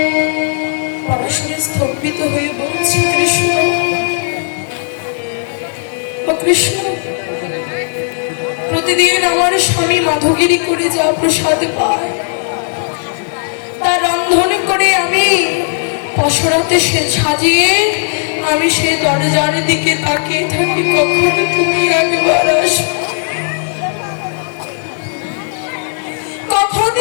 পরাশরী স্তম্ভিত হয়ে বলছে, কৃষ্ণ, ও কৃষ্ণ, প্রতিদিন আমার স্বামী মাধবগিরি করে যা প্রসাদ পায়, তা রন্ধন করে আমি পসরাতে সাজিয়ে আমি সে দরজার দিকে তাকিয়ে থাকি, কখনো তুমি একবার আসো, কখন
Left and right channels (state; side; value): silent; right; digital silence